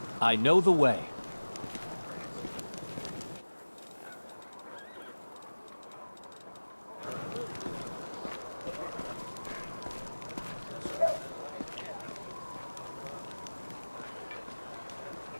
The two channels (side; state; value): both; inverted; correlation -1.00